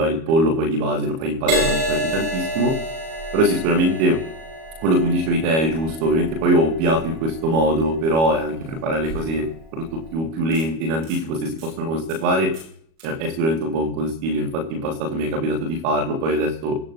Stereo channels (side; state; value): left; late; 37 ms